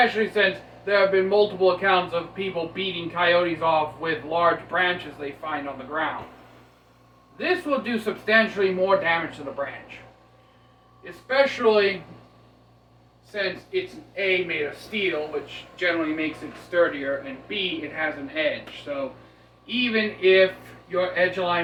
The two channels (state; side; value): identical; both; correlation 1.00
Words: since there have been multiple accounts of people beating coyotes off with large branches they find on the ground. This will do substantially more damage to the branch. Especially since it's A, made of steel, which generally makes it sturdier, and B, it has an edge. So even if your edge